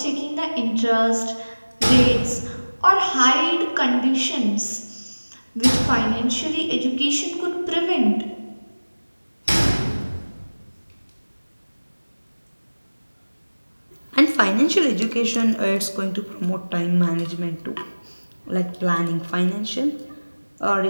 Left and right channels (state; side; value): inverted; both; correlation -1.00